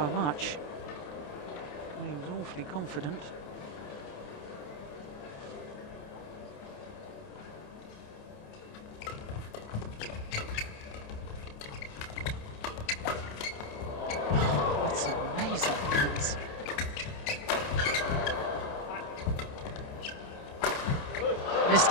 much. He was awfully confident. That's amazing defense. Missed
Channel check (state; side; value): late; right; 27 ms